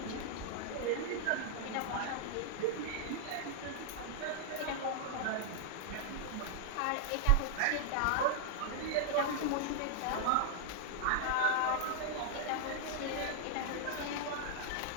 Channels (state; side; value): different; both; correlation -0.01